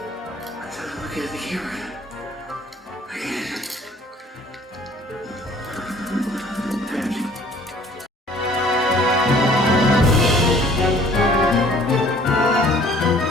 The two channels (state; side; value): normal; both; correlation 0.54